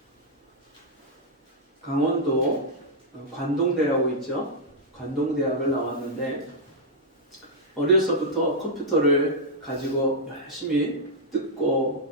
강원도 관동대라고 있죠. 관동대학을 나왔는데 어려서부터 컴퓨터를 가지고 열심히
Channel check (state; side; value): normal; both; correlation -0.05